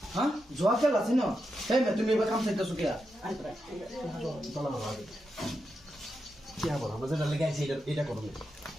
হ্যাঁ জোয়া খেলা আছে না এই মে তুমি এবার কাম চাইতেছো কে আমরা যেটা লেগে আছি এটা করবো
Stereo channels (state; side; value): normal; both; correlation 0.86